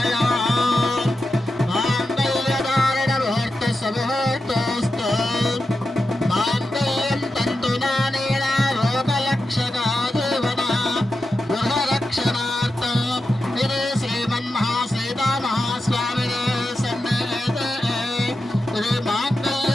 माङ्गल्यधारण मुहूर्तसमुहूर्तोऽस्तु माङ्गल्यं तन्तुदानेन लोकरक्षका देवना गृहरक्षणार्थं इति श्रीमन्महासीतामहास्वामिने सन्निहिते इति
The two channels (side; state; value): both; normal; correlation 0.90